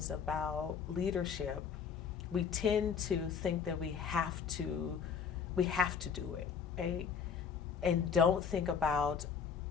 about leadership, we tend to think that we have to do it, right? And don't think about,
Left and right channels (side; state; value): right; quieter; 6.6 dB